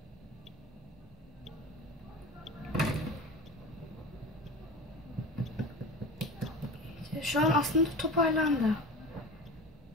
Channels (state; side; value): normal; both; correlation 0.32